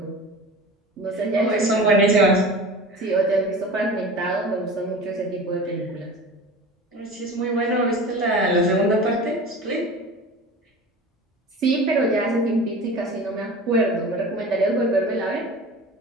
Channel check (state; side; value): normal; both; correlation 0.36